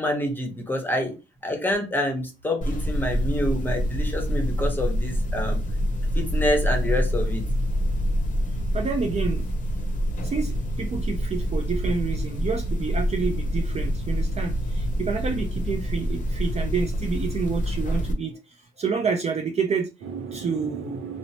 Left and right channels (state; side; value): normal; both; correlation 0.77